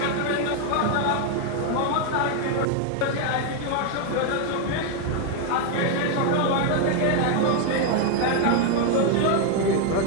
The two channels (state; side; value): different; both; correlation 0.01